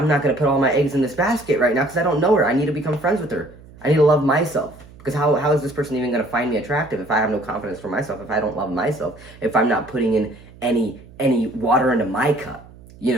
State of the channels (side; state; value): right; noise; hum, 22 dB below the sound